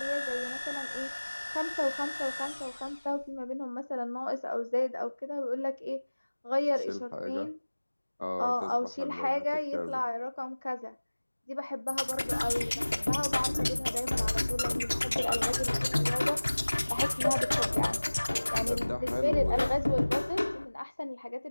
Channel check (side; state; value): both; inverted; correlation -1.00